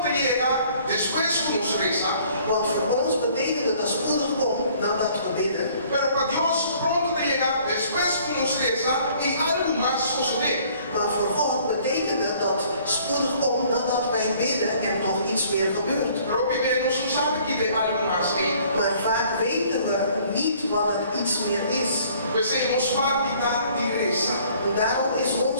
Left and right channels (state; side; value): inverted; both; correlation -0.57